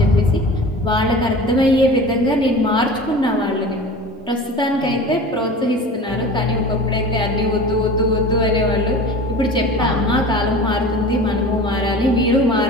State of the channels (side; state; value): both; normal; correlation 0.37